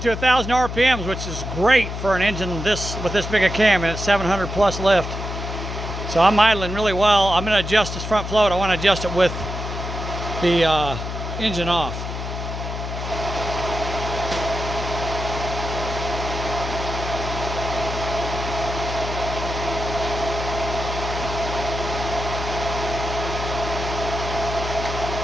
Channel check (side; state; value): left; noise; hum, 6 dB below the sound